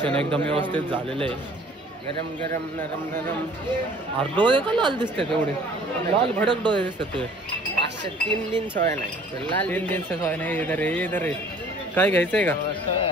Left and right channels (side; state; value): both; normal; correlation 0.52